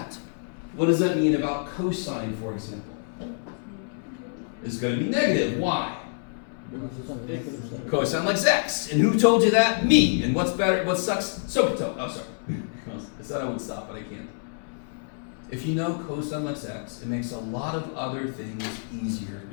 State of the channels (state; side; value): silent; right; 60 dB below the other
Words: What does that mean about cosine, for example? It's going to be negative. Why? Cosine likes x. And who told you that? Me. And what's better? What sucks? Sokoto. Oh, sorry. I said I would stop, but I can't. If you know cosine likes x, it makes a lot of other things easier